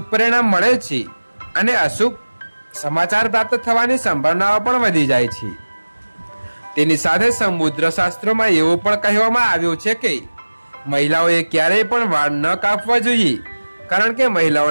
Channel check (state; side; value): inverted; both; correlation -1.00